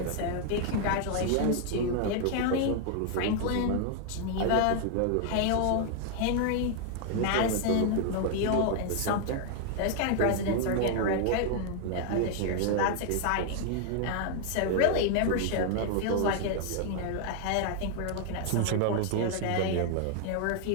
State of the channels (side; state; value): both; different; correlation 0.00